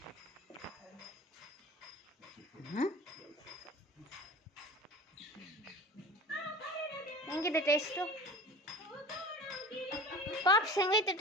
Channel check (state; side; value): normal; both; correlation 0.37